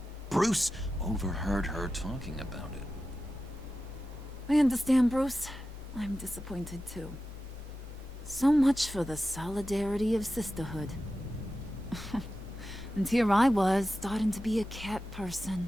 Bruce overheard her talking about it. I understand, Bruce. I'm disappointed too. So much for the solidarity of sisterhood. And here I was, starting to be a cat person.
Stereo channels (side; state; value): both; normal; correlation 0.92